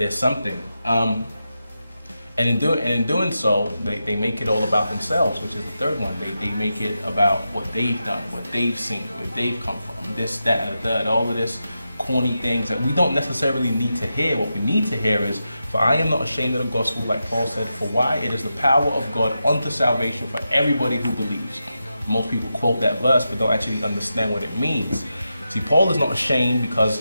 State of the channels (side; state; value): both; inverted; correlation -0.89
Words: something. And in doing so, they make it all about themselves, which is the third one. They make it about what they've done, what they've seen, where they've come from, this, that, and the third, all of this corny things that we don't necessarily need to hear. What we need to hear is, "For I am not ashamed of the gospel," like Paul said, "for why? It is the power of God unto salvation for everybody who believes." Most people quote that verse, but don't actually understand what it means. See, Paul is not ashamed